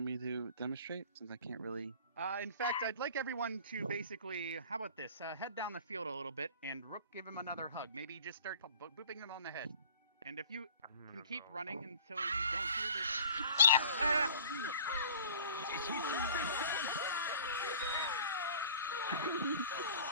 me to demonstrate since I can't really? In fact, I'd like everyone to basically, how about this? Head down the field a little bit, and Rook, give him another hug. Maybe just start booping him on the head. And if you can keep running until you don't hear this.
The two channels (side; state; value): both; inverted; correlation -0.45